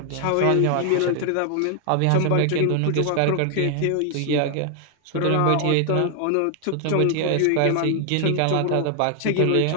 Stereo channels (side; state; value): both; different; correlation 0.00